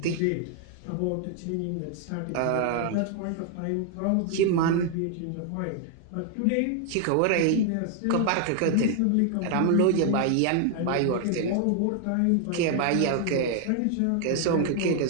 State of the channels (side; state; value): both; different; correlation 0.00